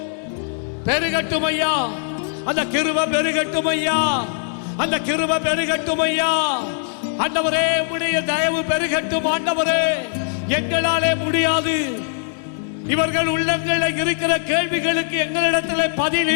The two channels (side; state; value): right; silent; digital silence